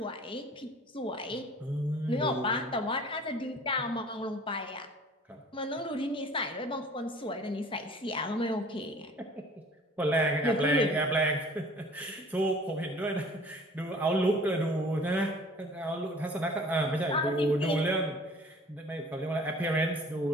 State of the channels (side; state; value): both; normal; correlation 0.49